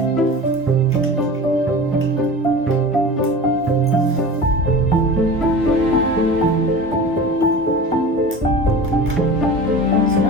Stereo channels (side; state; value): both; normal; correlation 0.35